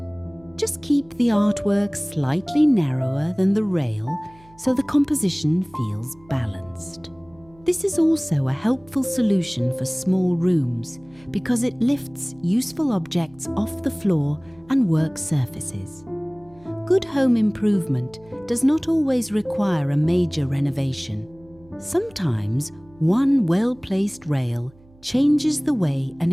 Just keep the artwork slightly narrower than the rail so the composition feels balanced. This is also a helpful solution for small rooms because it lifts useful objects off the floor and work surfaces. Good home improvement does not always require a major renovation. Sometimes one well-placed rail changes the way an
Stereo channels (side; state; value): right; noise; hum, 27 dB below the sound